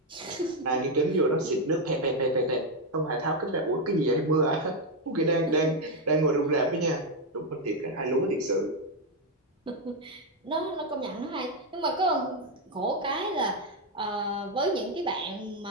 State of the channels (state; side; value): normal; both; correlation 0.03